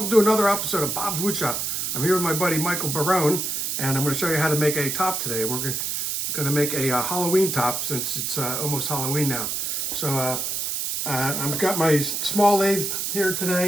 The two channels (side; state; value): right; noise; hiss, 1 dB below the sound